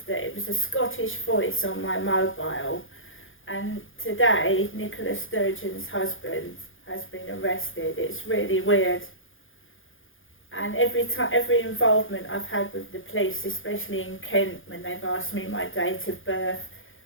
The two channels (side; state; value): right; late; 0.58 ms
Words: that it was a Scottish voice on my mobile. And today, Nicola Sturgeon's husband has been arrested. It's really weird. And every involvement I've had with the police, especially in Kent, when they've asked me my date of birth,